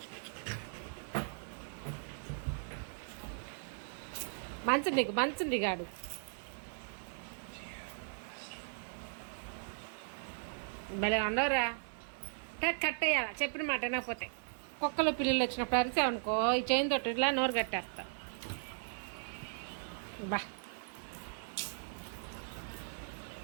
మంచుంది గాడు. భలే ఉండవురా. కట్టేయాల చెప్పిన మాట వినకపోతే. కుక్కలు పిల్లలు వచ్చినప్పుడు అరిచావనుకో ఈ చైన్ తోటి ఇట్లా నోరు కట్టేస్తా. బా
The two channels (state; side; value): silent; left; 53 dB below the other